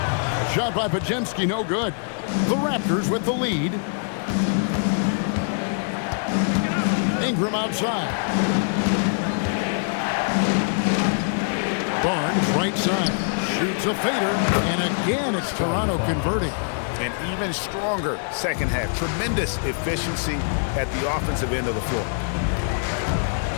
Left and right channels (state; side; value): silent; right; 63 dB below the other